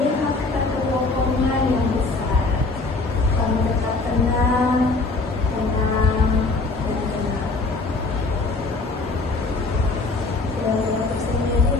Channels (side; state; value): right; quieter; 3.6 dB